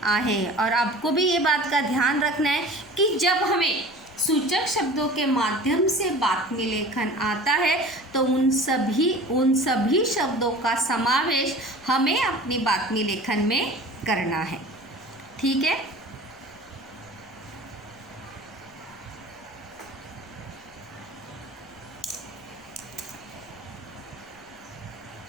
आए हैं। और आपको भी ये बात का ध्यान रखना है कि जब हमें सूचक शब्दों के माध्यम से बातमी लेखन आता है तो उन सभी शब्दों का समावेश हमें अपनी बातमी लेखन में करना है। ठीक है।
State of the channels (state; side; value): noise; left; rumble, 29 dB below the sound